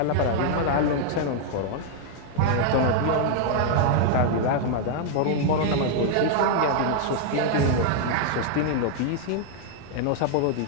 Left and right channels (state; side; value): different; both; correlation 0.00